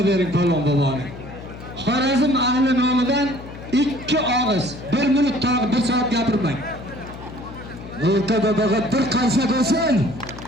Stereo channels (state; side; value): noise; left; hum, 14 dB below the sound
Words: bering Palvon boboni. Xorazm ahli nomidan 2 og'iz, 1 minut tag'i 1 soat gapirmang. O'rtada bir qarsak bo'lsin.